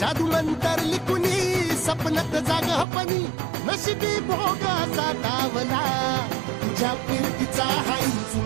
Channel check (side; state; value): left; drops out; at 2.9 s